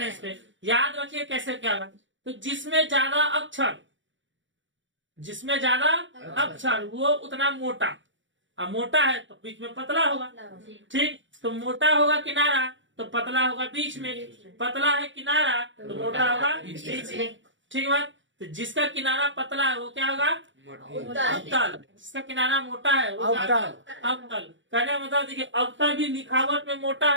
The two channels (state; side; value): late; left; 0.55 ms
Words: पे। याद रखिए कैसे क्या होगा। तो जिसमें ज्यादा अक्षर वो उतना मोटा, अब मोटा है तो बीच में पतला होगा। ठीक, तो मोटा होगा किनारा तो पतला होगा बीच में, पतला है किनारा तो मोटा होगा बीच में। ठीक है बात? तो जिसका किनारा पतला है वो क्या होगा? अवतल। जिसका किनारा मोटा है वो अवतल। कहने का मतलब देखिए, अवतल भी लिखावट में मोटा